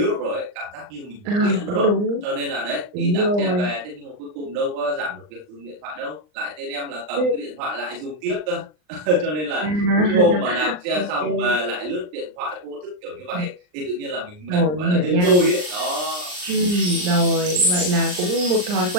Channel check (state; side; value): late; left; 39 ms